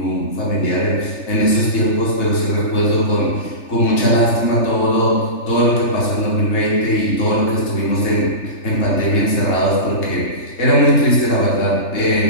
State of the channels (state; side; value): late; right; 3.3 ms